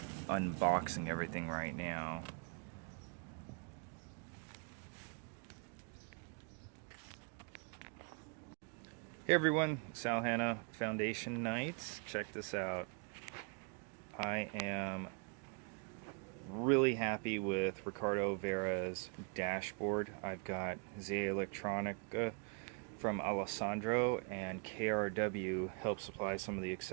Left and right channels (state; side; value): quieter; left; 38.7 dB